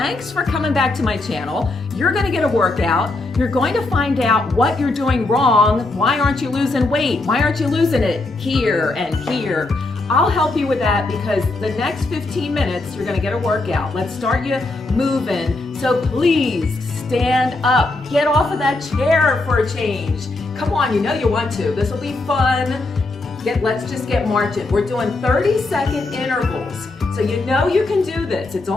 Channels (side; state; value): right; quieter; 3.1 dB